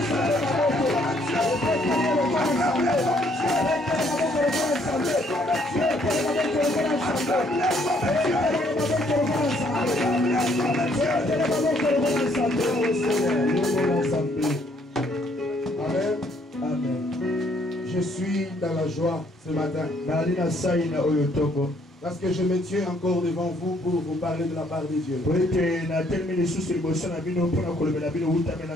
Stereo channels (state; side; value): normal; both; correlation 0.67